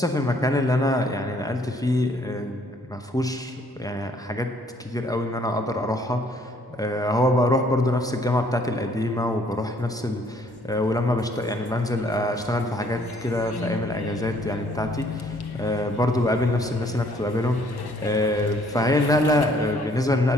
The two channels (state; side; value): normal; both; correlation 0.62